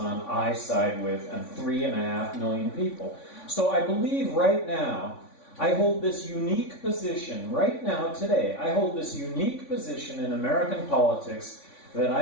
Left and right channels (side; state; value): right; late; 3.5 ms